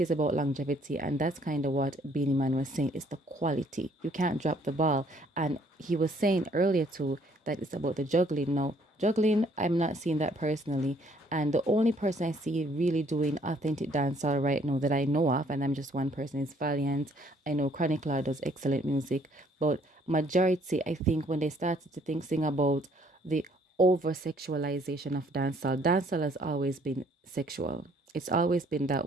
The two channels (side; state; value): both; normal; correlation 0.63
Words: about longevity, and that's kind of what Beanie Man was saying. It's the quality. You can't drop the ball. And he was saying earlier too that it's about the juggling. Now, juggling, I'm not seeing that personally. And the only person I see really doing authentic dancehall right now that I know of, and I'm just one person, is Valiant. I know Chronic Law does excellent music, but majority, I think, when they started to sing about the over sexualization of dancehall. Dancehall has always been sexual. It's always been that